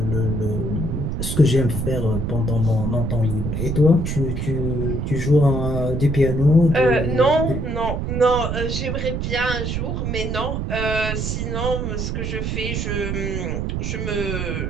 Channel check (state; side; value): noise; right; rumble, 2 dB below the sound